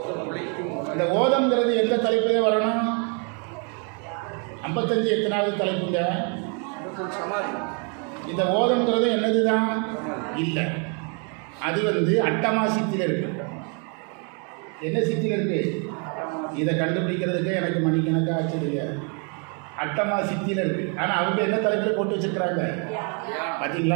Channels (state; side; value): quieter; left; 36.7 dB